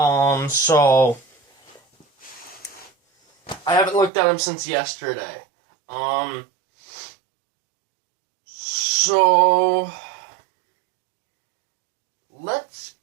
I haven't looked at them since yesterday. So let's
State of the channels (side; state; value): left; drops out; at 4.1 s